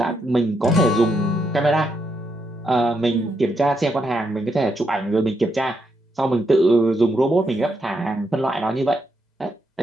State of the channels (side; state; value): both; normal; correlation 0.80